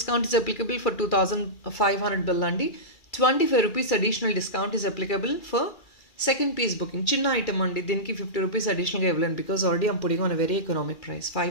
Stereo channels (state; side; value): late; right; 2.4 ms